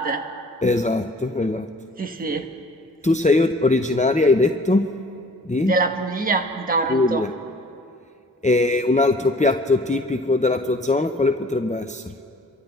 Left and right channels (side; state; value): both; normal; correlation 0.52